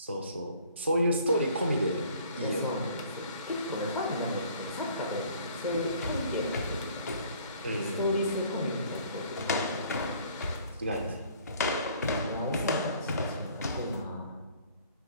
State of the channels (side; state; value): both; inverted; correlation -0.55